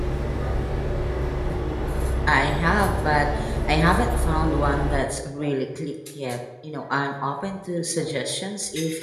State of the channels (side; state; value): both; identical; correlation 1.00